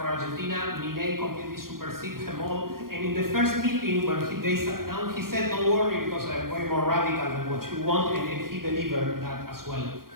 Argentina, Milei completely superseded them all. And in the first meeting when they sat down, he said, "Don't worry, because I'm way more radical than what you want," and he delivered that as well.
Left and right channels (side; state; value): left; late; 0.92 ms